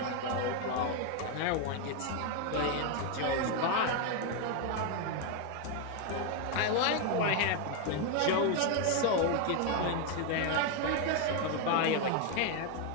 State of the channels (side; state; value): both; different; correlation 0.01